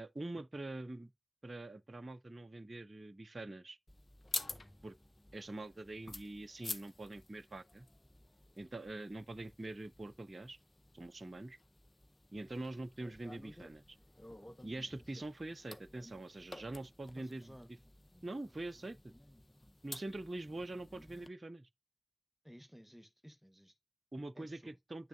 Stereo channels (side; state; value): both; normal; correlation 0.95